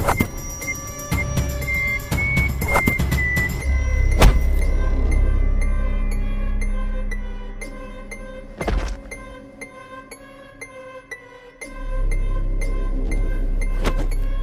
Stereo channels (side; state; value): both; identical; correlation 1.00